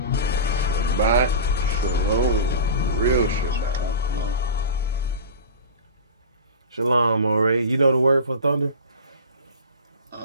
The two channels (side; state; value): both; inverted; correlation -0.30